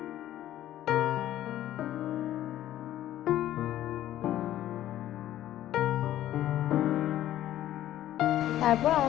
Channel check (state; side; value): quieter; right; 13.0 dB